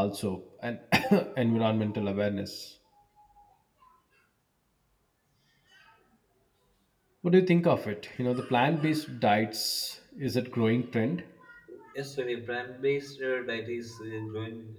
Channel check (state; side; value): identical; both; correlation 1.00